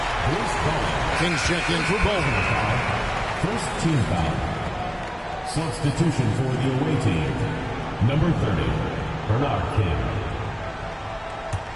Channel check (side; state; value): both; identical; correlation 1.00